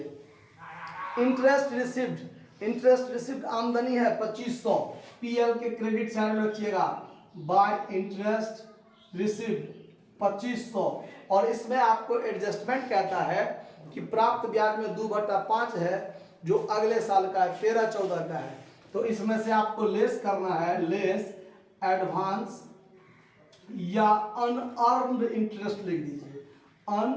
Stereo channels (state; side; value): identical; both; correlation 1.00